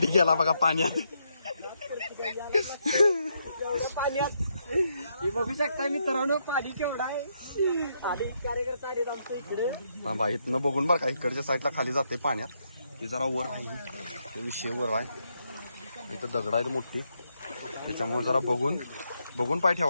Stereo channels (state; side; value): inverted; both; correlation -0.78